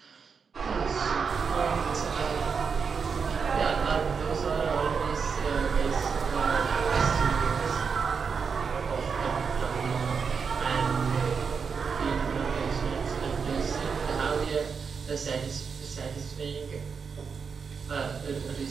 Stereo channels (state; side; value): quieter; left; 5.8 dB